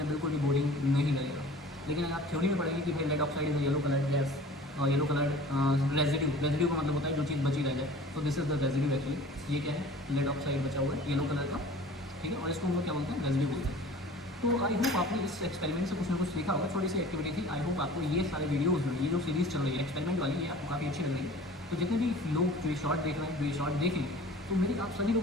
बिल्कुल भी बोरिंग नहीं लगेगा। लेकिन अगर आप थ्योरी में पढ़ेंगे कि भाई lead oxide is yellow colour gas, और येलो कलर रेजिड्यू का मतलब होता है जो चीज़ बची रह जाए, तो this is the residue actually. ये क्या है, लेड ऑक्साइड बचा हुआ है येलो कलर का, ठीक है, और इसको हम लोग क्या बोलते हैं, रेजिड्यू बोलते हैं। तो आई होप आपने इस एक्सपेरिमेंट से कुछ ना कुछ सीखा होगा, छोटी सी एक्टिविटी थी। आई होप आपको ये सारे वीडियोज़ में ये जो सीरीज़ चल रही है एक्सपेरिमेंट वाली, ये आपको काफ़ी अच्छी लग रही है। तो जितने भी लोग जो ये शॉर्ट देख रहे हैं, जो ये शॉर्ट देखें, तो मेरी आप सभी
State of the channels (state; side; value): normal; both; correlation 0.44